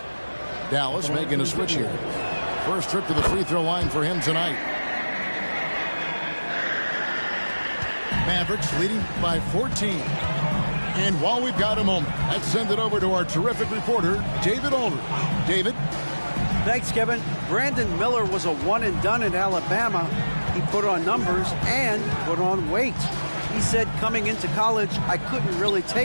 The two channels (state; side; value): inverted; both; correlation -1.00